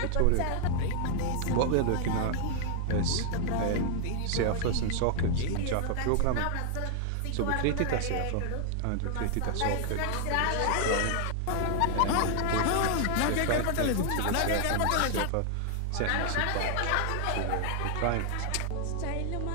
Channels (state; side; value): different; both; correlation 0.00